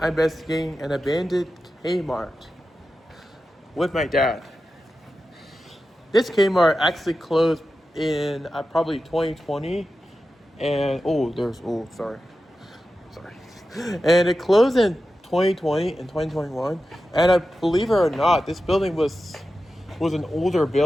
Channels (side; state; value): both; normal; correlation 0.92